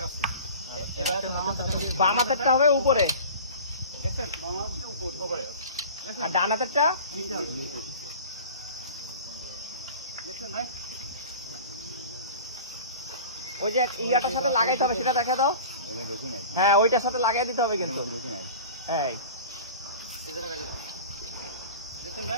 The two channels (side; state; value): both; inverted; correlation -0.38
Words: এবার বাম হাতেরটা হবে উপরে, দেখছেন বাম হাতটা উপরে আর ডান হাতেরটা নিচে হবে। দেখছেন ভাই ওই যে ইয়াটার সাথে লাগাইতে হবে, সেটা দেখা দাও। হ্যাঁ, ওইটার সাথে লাগাই দিতে হবে কিন্তু। এই এই যে লাগাই দাও। দেখছেন